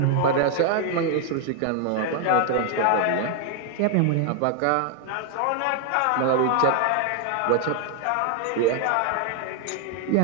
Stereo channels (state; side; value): different; both; correlation 0.00